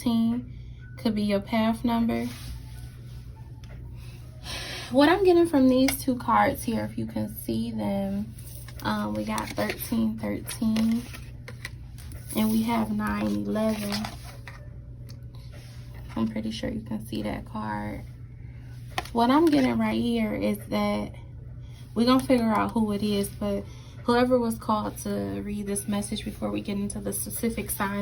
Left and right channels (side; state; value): both; identical; correlation 1.00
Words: could be your path number. What I'm getting from these two cards here, if you can see them, we got 13, 13, and we have 9, 11. I'm pretty sure you can see that card. What I'm getting right here is that we're going to figure out who it is, but whoever was called to read this message before we get into the specific